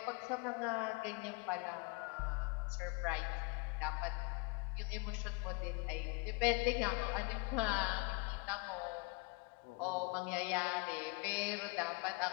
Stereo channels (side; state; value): right; quieter; 29.6 dB